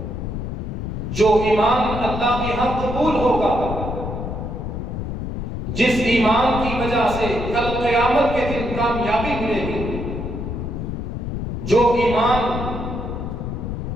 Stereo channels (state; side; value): noise; left; rumble, 5 dB below the sound